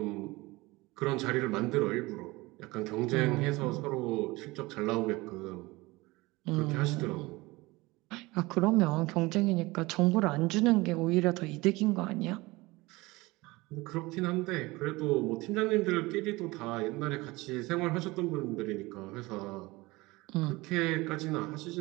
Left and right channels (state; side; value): quieter; left; 21.8 dB